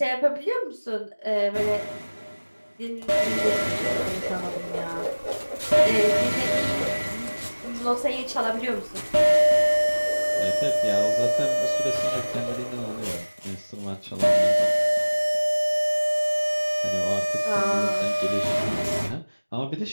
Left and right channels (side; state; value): both; inverted; correlation -1.00